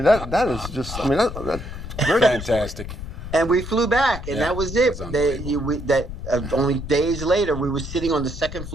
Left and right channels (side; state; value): left; noise; rumble, 9 dB below the sound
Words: that is just. I mean, that's very fantastic. And we flew back, and that was it. Only days later, we were sitting on the second